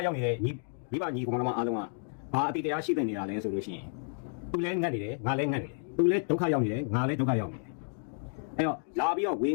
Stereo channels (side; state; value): right; silent; digital silence